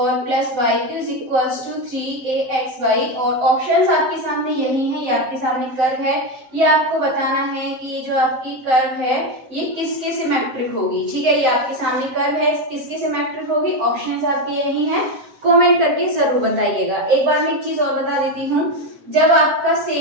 plus y cube is equals to 3axy और ऑप्शंस आपके सामने यही है, ये आपके सामने कर्व है, ये आपको बताना है कि ये जो आपकी कर्व है ये किसके सिमेट्रिक होगी, ठीक है। ये आपके सामने कर्व है, किसके सिमेट्रिक होगी, ऑप्शंस आपके यही हैं, कमेंट करके जरूर बताइएगा। एक बार मैं एक चीज और बता देती हूँ, जब आपका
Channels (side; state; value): left; late; 7.7 ms